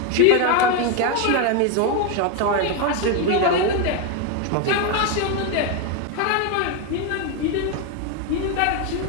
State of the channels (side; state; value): both; different; correlation 0.02